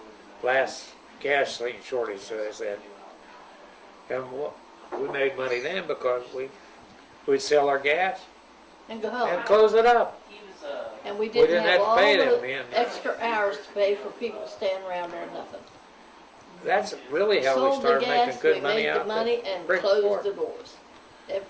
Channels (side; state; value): both; identical; correlation 1.00